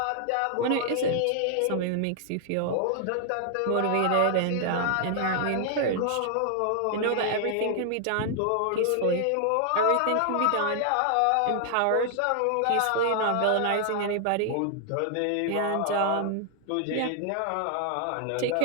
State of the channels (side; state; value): both; different; correlation 0.00